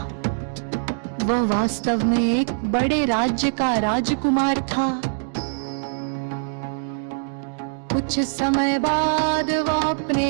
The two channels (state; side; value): silent; left; digital silence